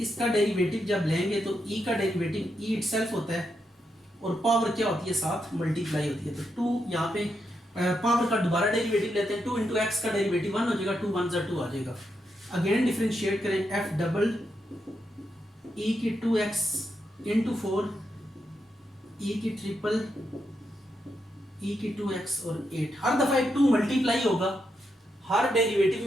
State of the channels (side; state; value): both; normal; correlation 0.83